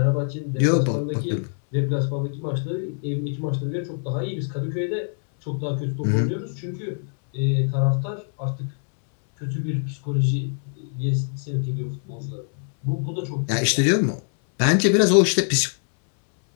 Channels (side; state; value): right; silent; 63 dB below the other